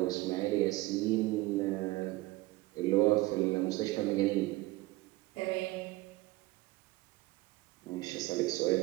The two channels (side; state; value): left; quieter; 19.7 dB